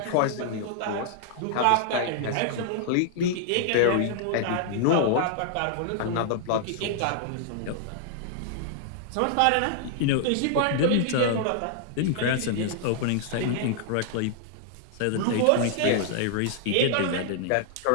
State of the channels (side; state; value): both; different; correlation -0.01